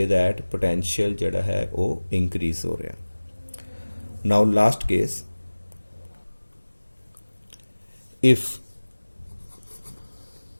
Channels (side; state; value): both; inverted; correlation -1.00